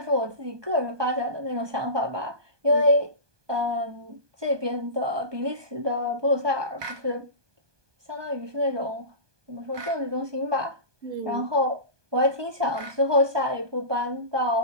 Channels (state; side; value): late; left; 1.2 ms